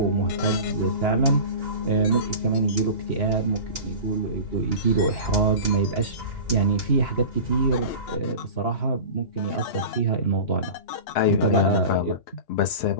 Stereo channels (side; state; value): right; late; 2.9 ms